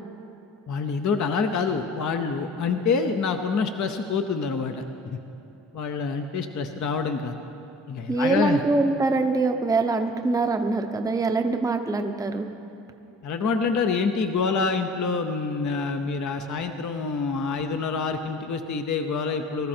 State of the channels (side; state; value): both; normal; correlation 0.47